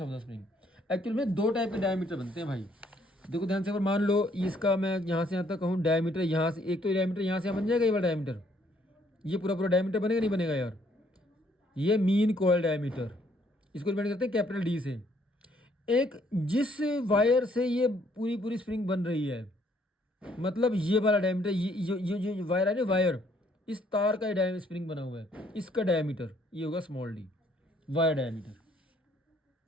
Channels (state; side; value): normal; both; correlation 0.66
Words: the spring. Actual में 2 टाइप के डायमीटर बनते हैं भाई, देखो ध्यान से। अगर मान लो इसका मैं यहाँ से यहाँ तक कहूँ डायमीटर, यहाँ से एक तो डायमीटर यहाँ से बन जाएगा, ये वाला डायमीटर, ये पूरा डायमीटर बनेगा नहीं बनेगा यार, ये मीन कॉइल डायमीटर, इसको डिपेंड करते हैं कैपिटल डी से। एक जिस वायर से ये पूरी स्प्रिंग बन रही है, मतलब ये वाला डायमीटर, ये वायर है ना, वायर, इस तार का डायमीटर स्प्रिंग बना हुआ है, इसका डायमीटर ये होगा स्मॉल डी, वायर डायमीटर।